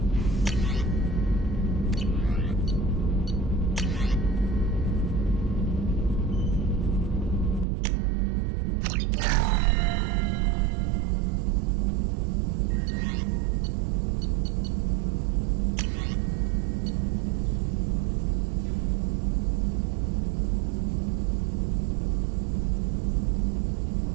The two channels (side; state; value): left; drops out; at 7.7 s